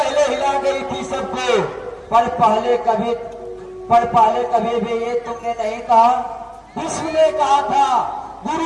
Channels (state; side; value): identical; both; correlation 1.00